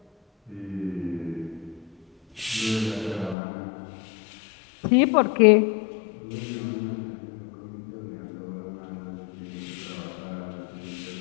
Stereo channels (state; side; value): drops out; right; at 3.4 s